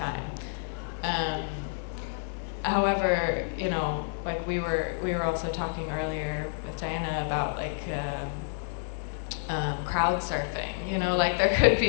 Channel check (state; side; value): silent; right; digital silence